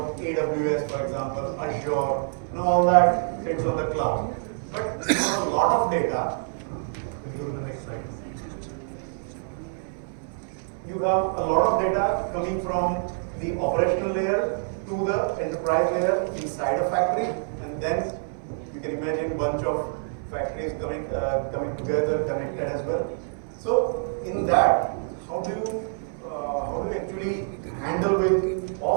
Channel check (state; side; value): silent; left; 60 dB below the other